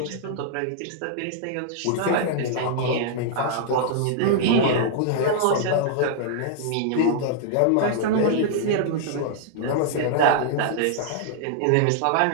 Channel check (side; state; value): both; different; correlation -0.01